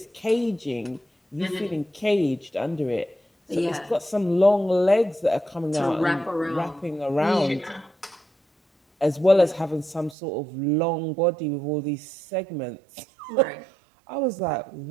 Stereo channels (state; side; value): drops out; left; at 10.2 s